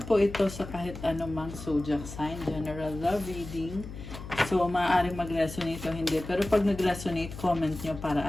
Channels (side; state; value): left; noise; hum, 11 dB below the sound